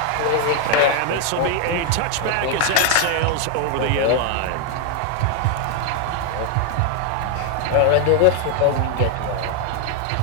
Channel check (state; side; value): different; both; correlation 0.00